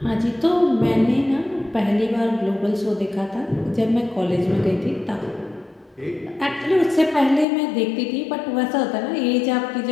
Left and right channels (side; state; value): right; drops out; at 7.5 s